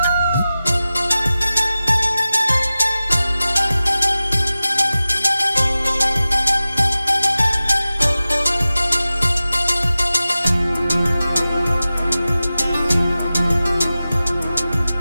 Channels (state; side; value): inverted; both; correlation -0.95